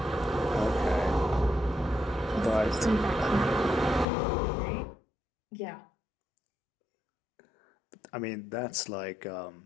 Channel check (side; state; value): right; drops out; at 4.0 s